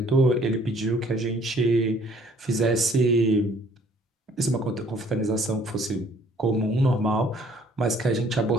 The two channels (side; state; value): both; normal; correlation 0.59